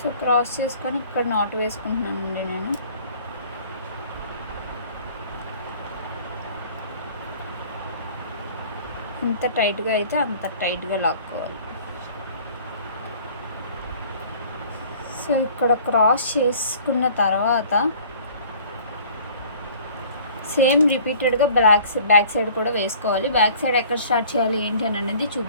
క్రాస్ చేసుకొని ఇక్కడ నాట్ వేసుకుంటున్నానండి నేను. ఎంత టైట్గా అయితే అంత టైట్గా లాక్కోవాలి. సో ఇక్కడ క్రాస్ చేసుకున్న తర్వాత సేమ్ రిపీటెడ్గా బ్యాక్ సైడ్ కూడా వేసుకోవాలి. బ్యాక్ సైడ్ ఎక్కడ స్టార్ట్ చేయాలి ఏంటి అని అనేది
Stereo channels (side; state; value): both; inverted; correlation -0.50